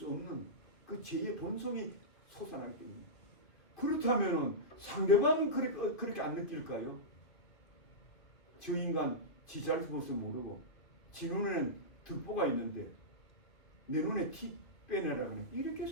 없는 그 죄의 본성이 솟아나기 때문에. 그렇다면 상대방은 그렇게 안 느낄까요? 저 인간 지 잘못을 모르고 지 눈에는 득보가 있는데 내 눈에 티 빼내라 그래. 이렇게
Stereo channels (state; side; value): late; right; 2.6 ms